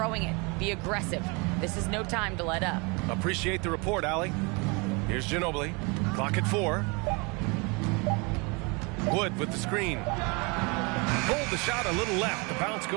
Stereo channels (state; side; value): quieter; left; 29.6 dB